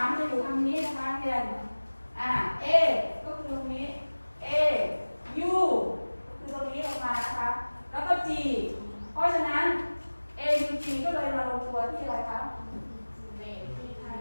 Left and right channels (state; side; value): inverted; both; correlation -1.00